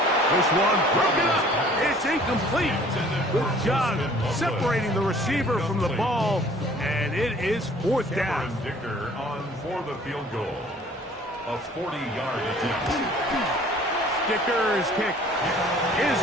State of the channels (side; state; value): both; normal; correlation 0.53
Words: This one broken up. It's incomplete. Good job separating the receiver from the ball, and it is 4th down. Cameron Dicker on for the field goal. A 40-yard attempt. Dicker's kick is